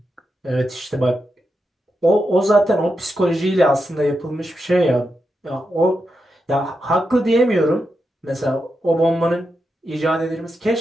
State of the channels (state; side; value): normal; both; correlation 0.87